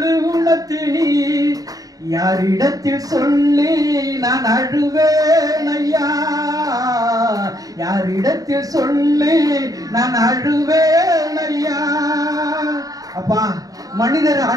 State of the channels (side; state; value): left; late; 0.18 ms